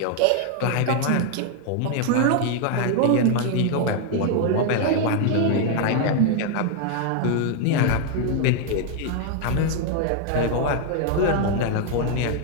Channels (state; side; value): different; both; correlation 0.00